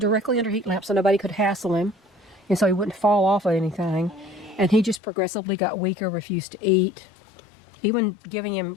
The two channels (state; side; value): drops out; right; at 5.0 s